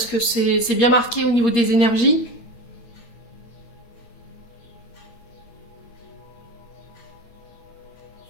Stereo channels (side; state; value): right; late; 8.5 ms